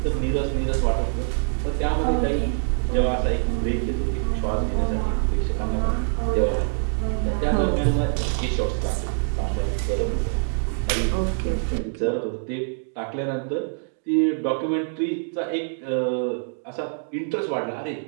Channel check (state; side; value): silent; left; digital silence